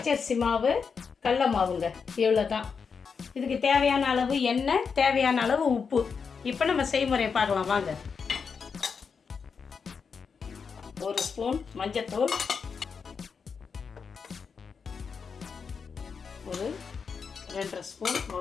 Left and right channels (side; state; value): right; quieter; 5.8 dB